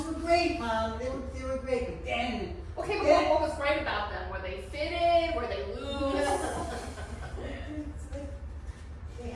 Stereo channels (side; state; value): both; identical; correlation 1.00